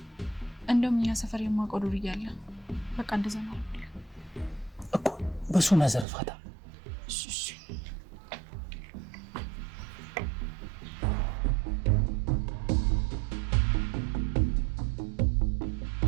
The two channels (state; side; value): drops out; left; at 6.1 s